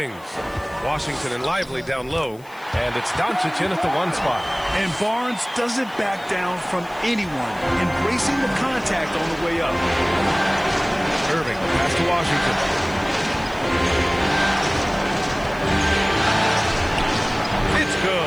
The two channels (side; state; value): left; noise; hiss, 26 dB below the sound